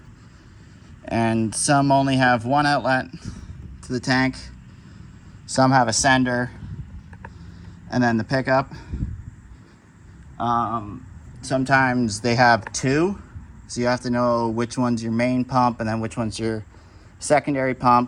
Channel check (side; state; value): both; identical; correlation 1.00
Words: And some only have one outlet to the tank. Some have a sender and then the pickup. Sometimes they have two, so you have to know which one's your main pump and then which one's your secondary